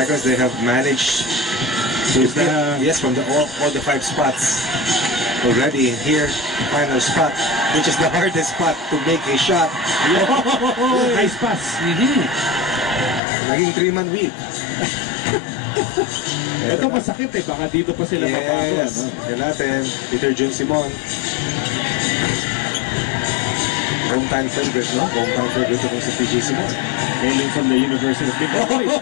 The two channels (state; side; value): drops out; right; at 13.2 s